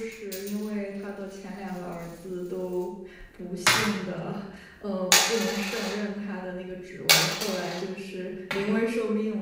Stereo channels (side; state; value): both; identical; correlation 1.00